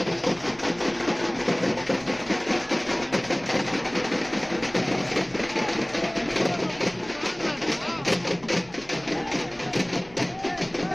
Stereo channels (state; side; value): noise; left; rumble, 25 dB below the sound